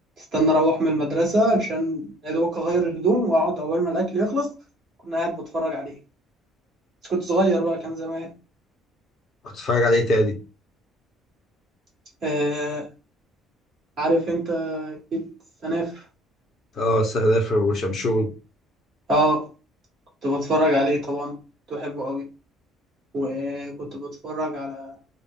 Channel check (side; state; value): both; normal; correlation 0.55